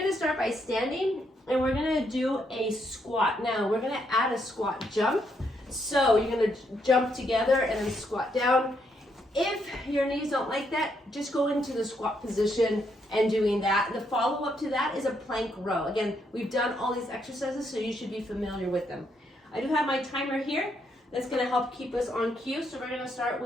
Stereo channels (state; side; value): normal; both; correlation 0.76